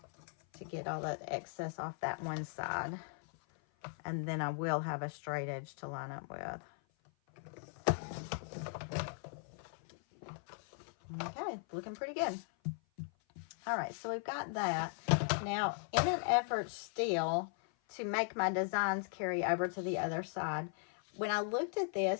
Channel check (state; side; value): silent; right; 52 dB below the other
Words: to get all that excess off that one side. And then I will have a straight edge to line up with. Okay, looking pretty good. All right, so we've got that. Now, in an effort still to make my designs carry over to the other side, when I looked at